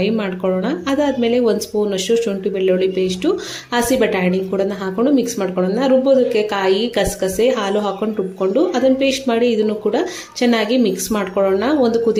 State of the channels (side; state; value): both; identical; correlation 1.00